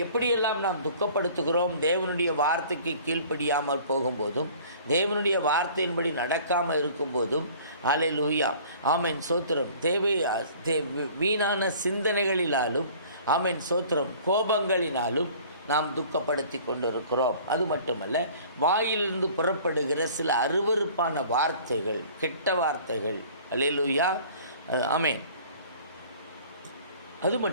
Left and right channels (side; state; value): both; inverted; correlation -0.49